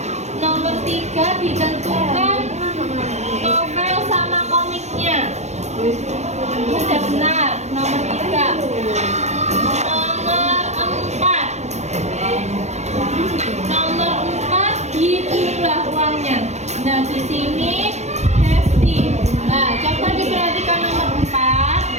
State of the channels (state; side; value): late; left; 0.33 ms